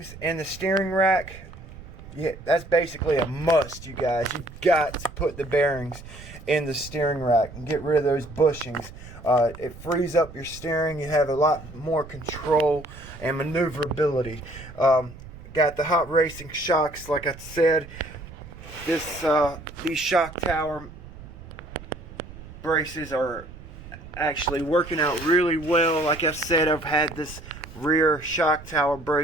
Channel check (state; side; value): noise; right; rumble, 16 dB below the sound